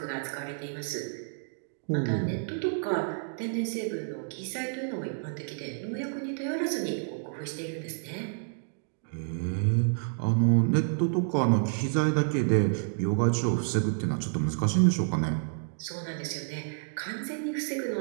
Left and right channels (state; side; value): silent; left; digital silence